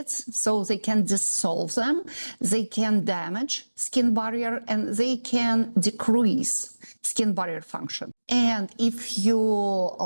so they can dissolve them, they can damage skin barrier, and they can decrease skin barrier function. And if you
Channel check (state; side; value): inverted; both; correlation -1.00